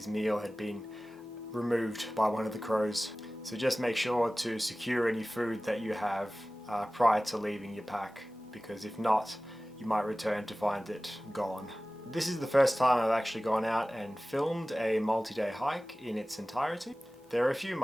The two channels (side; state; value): both; normal; correlation 0.97